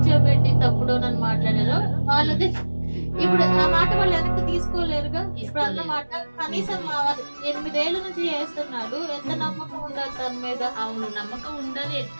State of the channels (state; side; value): inverted; both; correlation -1.00